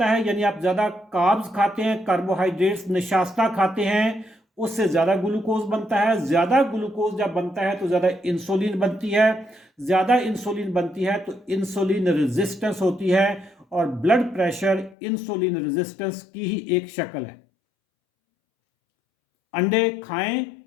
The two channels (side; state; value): right; drops out; at 15.0 s